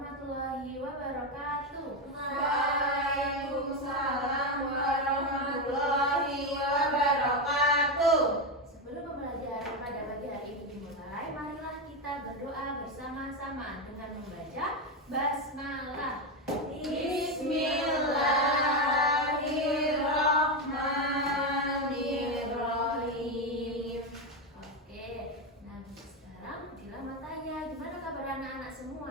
wabarakatuh. Waalaikumsalam warahmatullahi wabarakatuh. Sebelum pembelajaran pada pagi hari ini dimulai, marilah kita berdoa bersama-sama dengan membaca basmalah. Bismillahirrahmanirrahim. Oke, nah sekarang bila mau tanya, gimana kabar anak-anak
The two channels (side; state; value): both; normal; correlation 0.11